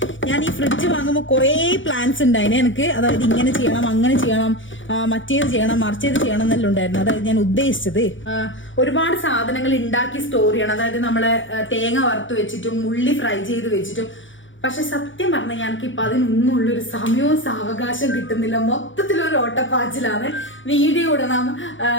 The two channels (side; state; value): right; late; 0.56 ms